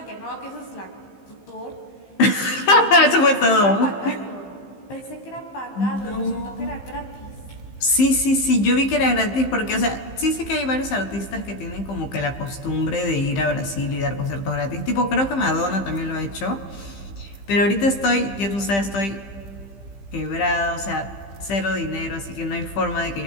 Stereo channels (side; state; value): right; late; 15 ms